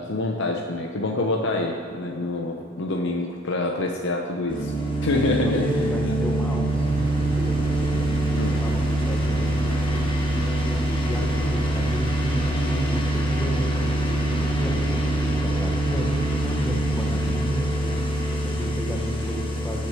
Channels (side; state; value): both; normal; correlation 0.71